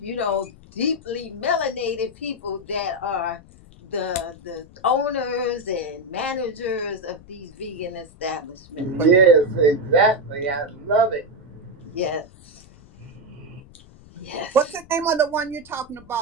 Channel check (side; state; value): left; noise; rumble, 22 dB below the sound